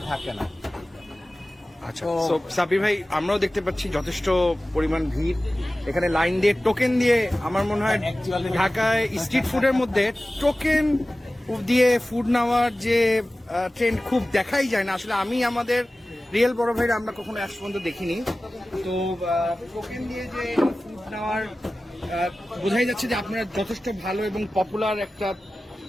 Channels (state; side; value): normal; both; correlation 0.96